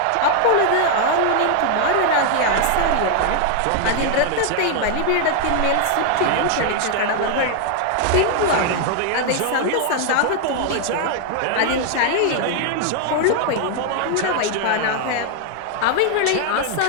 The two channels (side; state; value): both; different; correlation 0.00